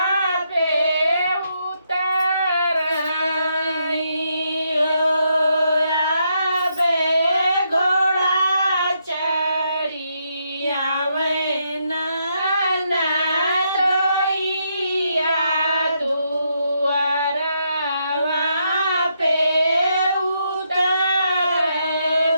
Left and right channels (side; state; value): both; inverted; correlation -0.78